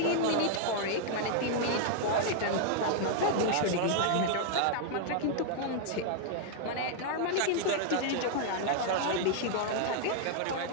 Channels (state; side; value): different; both; correlation -0.01